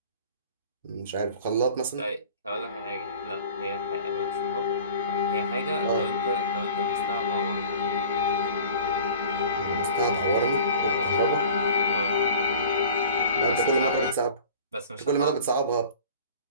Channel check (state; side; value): inverted; both; correlation -0.44